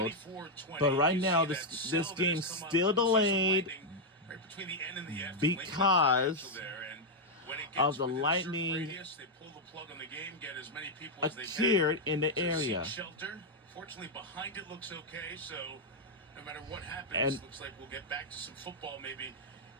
But right now, this game's still delayed because of the lightning appeared in the area. Fortunately, behind it looks okay, so no matter what happens, looks like we'll get back to some football maybe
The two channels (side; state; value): both; normal; correlation -0.01